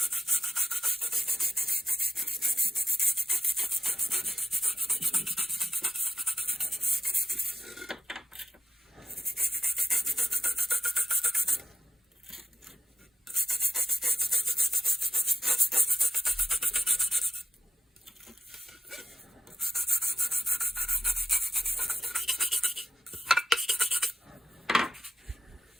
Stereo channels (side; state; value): both; normal; correlation 0.90